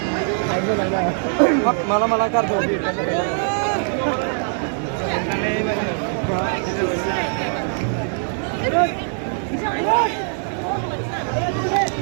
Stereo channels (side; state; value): left; silent; 56 dB below the other